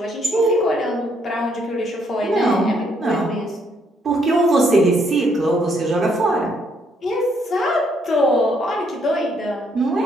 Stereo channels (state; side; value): normal; both; correlation 0.71